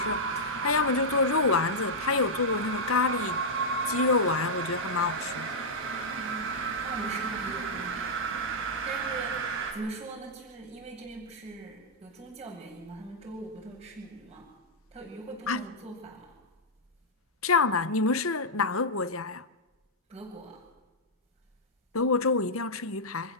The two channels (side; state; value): both; normal; correlation -0.08